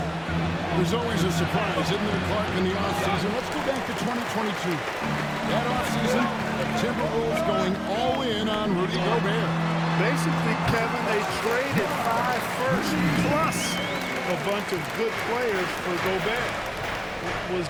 There's always a surprise, isn't there, Clark, in the offseason? Let's go back to 2022. That offseason, the Timberwolves going all in on Rudy Gobert. Basically, Kevin, they traded 5 firsts plus a bunch of good players for Gobert. It was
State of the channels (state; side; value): identical; both; correlation 1.00